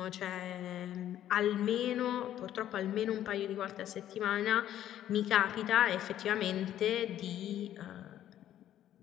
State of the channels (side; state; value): right; quieter; 11.7 dB